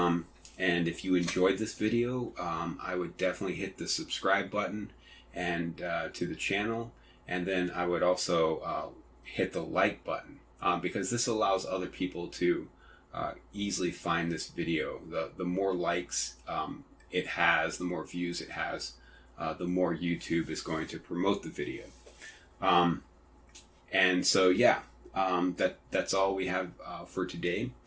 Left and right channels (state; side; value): identical; both; correlation 1.00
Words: if you enjoyed this video, I would definitely hit the subscribe button and to the channel, and then I would also hit the like button because this allows other people to easily find this video. The more likes it has, the more views it has, the more YouTube is going to promote the video. And so yeah, that's all we have for today.